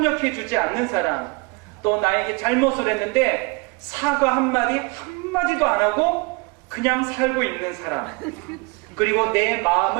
않는 사람, 또 나에게 잘못을 했는데 사과 한마디도 안 하고 그냥 살고 있는 사람, 그리고 내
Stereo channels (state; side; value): quieter; left; 29.0 dB